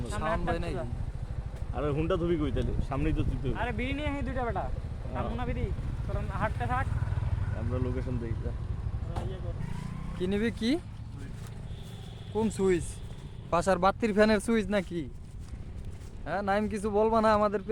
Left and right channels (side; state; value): both; identical; correlation 1.00